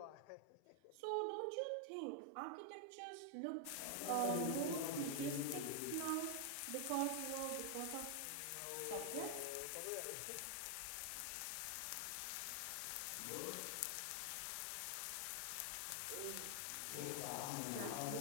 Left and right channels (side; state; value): both; different; correlation 0.00